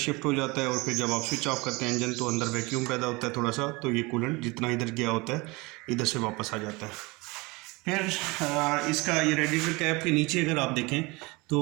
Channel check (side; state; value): left; quieter; 24.8 dB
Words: हो जाता है और फिर जब आप स्विच ऑफ करते हैं इंजन तो अंदर वैक्यूम पैदा होता है थोड़ा सा, तो ये कूलेंट जितना इधर गया होता है इधर से वापस आ जाता है। फिर इसका ये रेडिएटर कैप के नीचे अगर आप देखें